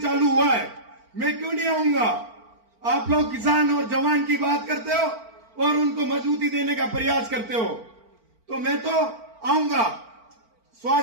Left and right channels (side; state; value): left; late; 4.4 ms